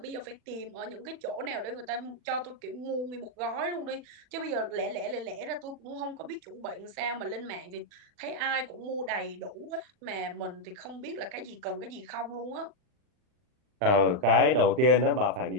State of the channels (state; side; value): late; left; 40 ms